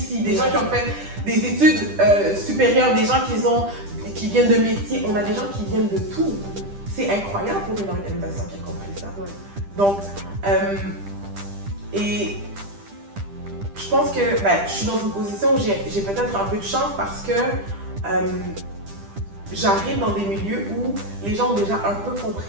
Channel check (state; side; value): late; left; 10 ms